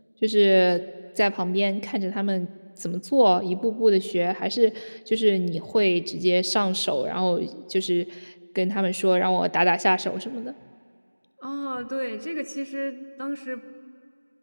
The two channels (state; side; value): inverted; both; correlation -1.00